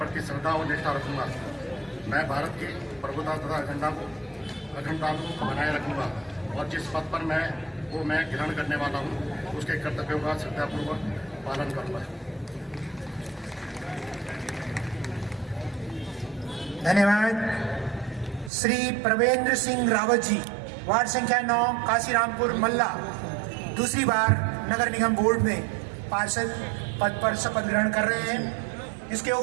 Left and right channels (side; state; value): left; drops out; at 18.5 s